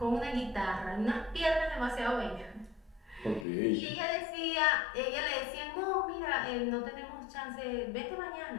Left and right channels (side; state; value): right; drops out; at 3.5 s